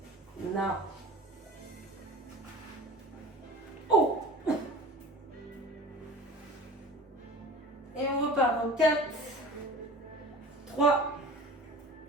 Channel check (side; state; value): both; normal; correlation 0.40